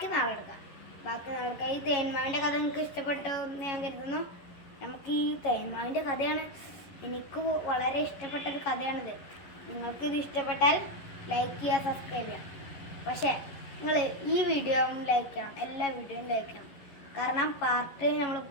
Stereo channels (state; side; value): late; right; 11 ms